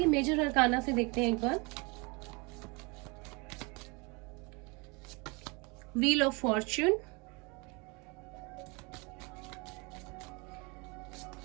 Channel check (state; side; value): quieter; left; 29.0 dB